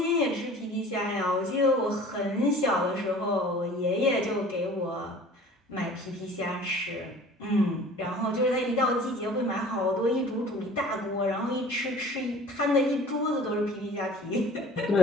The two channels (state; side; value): normal; both; correlation 0.46